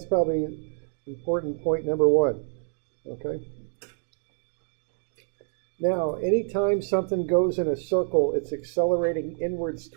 probably important point number one, okay? Now, anytime something goes in a circle, it's accelerating inwards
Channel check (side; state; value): left; silent; digital silence